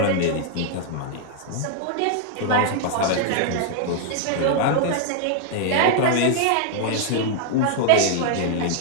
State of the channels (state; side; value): different; both; correlation 0.00